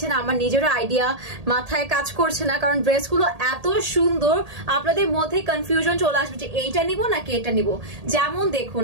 আমার নিজের আইডিয়া মাথায় কাজ করছে না, কারণ ড্রেসগুলো এত সুন্দর আপনাদের মধ্যে কনফিউশন চলে আসবে যে এইটা নিব নাকি এটা নিব। যেমন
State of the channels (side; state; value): left; late; 1.8 ms